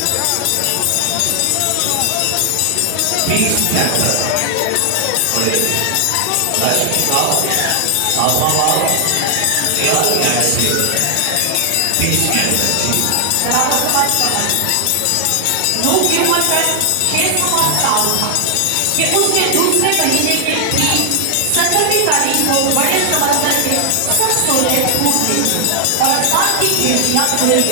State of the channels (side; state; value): both; different; correlation 0.00